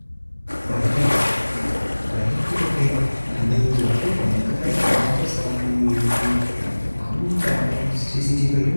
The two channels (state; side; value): inverted; both; correlation -1.00